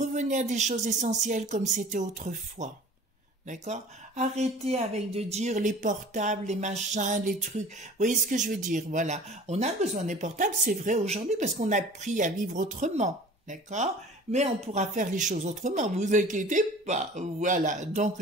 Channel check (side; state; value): both; normal; correlation 0.45